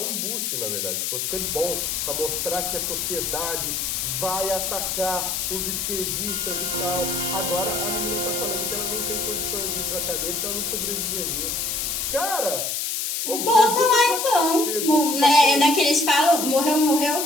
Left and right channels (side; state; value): left; noise; hiss, 1 dB below the sound